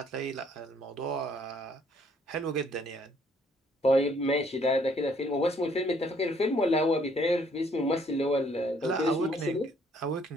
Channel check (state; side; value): normal; both; correlation 0.64